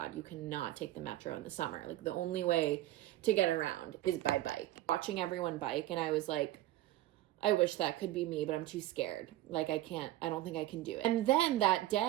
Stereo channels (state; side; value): quieter; left; 15.1 dB